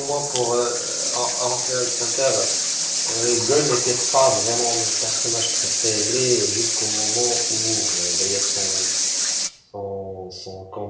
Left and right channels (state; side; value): identical; both; correlation 1.00